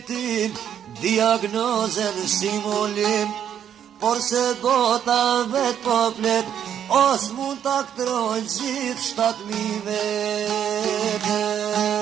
diagnozen simulim, por se bota vet po flet, os mund ta aktrojnë gjithë 7.000 vete.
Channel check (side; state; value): left; quieter; 9.3 dB